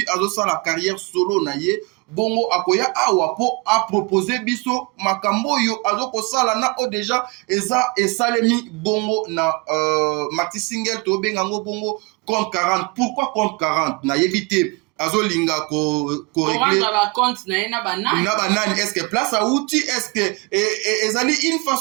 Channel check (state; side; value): quieter; left; 26.7 dB